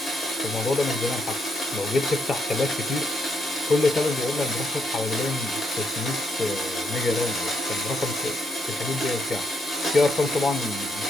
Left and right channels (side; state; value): both; normal; correlation 0.78